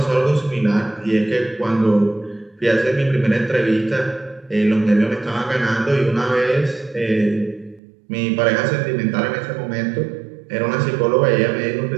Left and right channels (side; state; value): left; drops out; at 7.8 s